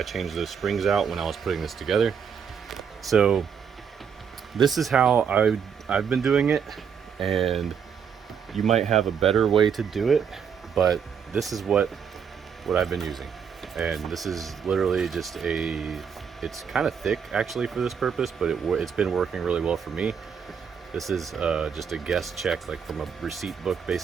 changed those springs out when I was putting this together. So this is how I've been doing it, and you might have a better way to do it, but this is what I've been using. And this is literally just it's kind of thick actually for this purpose, but it's been working really well for me. This is just a guest check, like from a receipt book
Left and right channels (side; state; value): left; quieter; 7.1 dB